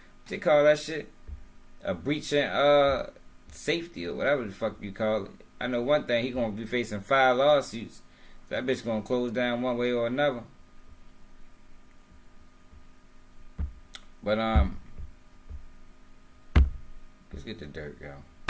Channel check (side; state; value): both; identical; correlation 1.00